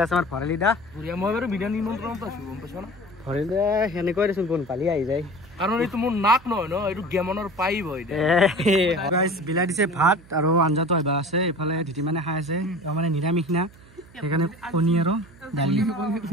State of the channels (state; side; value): noise; right; hum, 23 dB below the sound